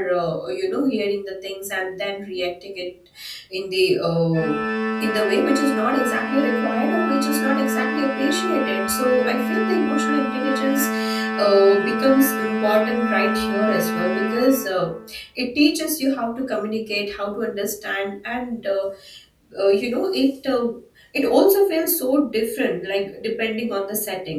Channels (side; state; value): both; identical; correlation 1.00